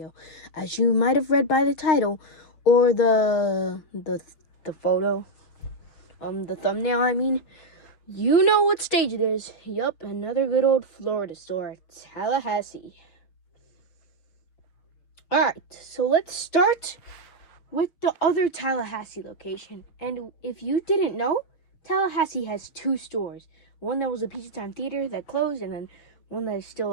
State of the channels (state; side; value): late; right; 6.3 ms